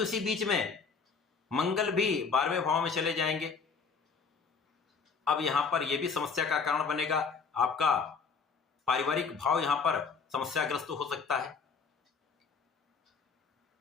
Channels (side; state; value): right; quieter; 5.4 dB